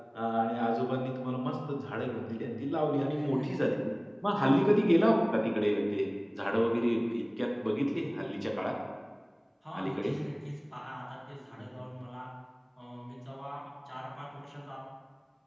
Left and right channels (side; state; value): both; identical; correlation 1.00